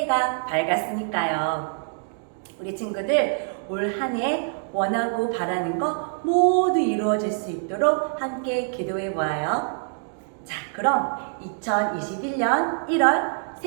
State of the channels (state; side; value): silent; left; digital silence